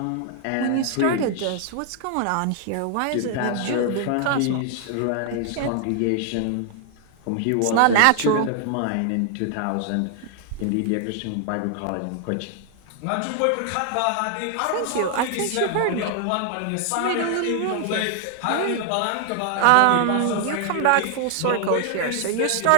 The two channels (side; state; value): both; different; correlation 0.00